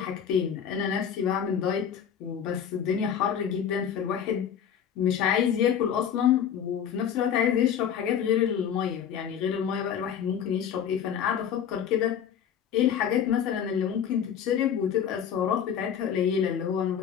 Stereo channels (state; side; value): quieter; right; 8.5 dB